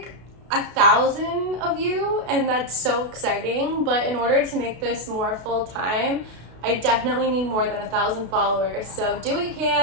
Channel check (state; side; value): late; left; 33 ms